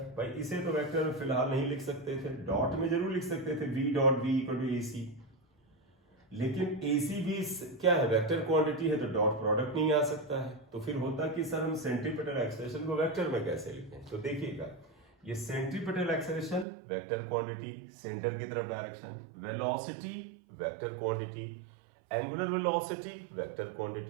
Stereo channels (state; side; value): drops out; left; at 16.7 s